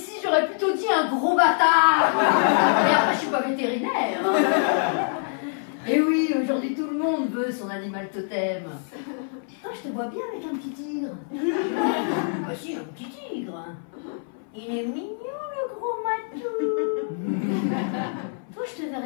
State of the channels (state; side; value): silent; right; 62 dB below the other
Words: un gros bâtard. Et après, je suis pas vétérinaire. Et oui, aujourd'hui, tout le monde veut son animal totem. Toi, je te vois bien avec un petit tigre. Bah si, un petit tigre. Il est mignon, le gros matou. Toi, je te